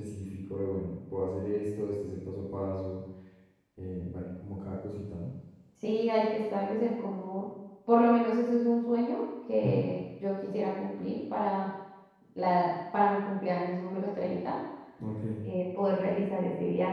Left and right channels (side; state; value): both; identical; correlation 1.00